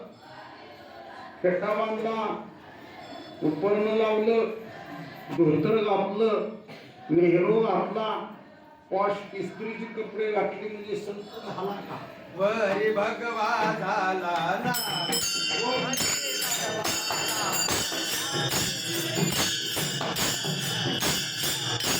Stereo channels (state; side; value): identical; both; correlation 1.00